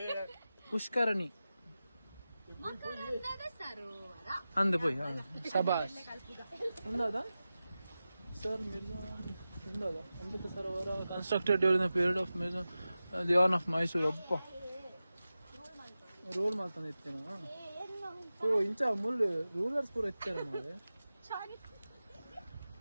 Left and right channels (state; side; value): inverted; both; correlation -0.94